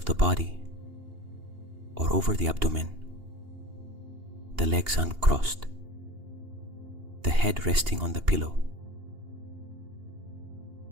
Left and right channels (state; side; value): late; left; 2.8 ms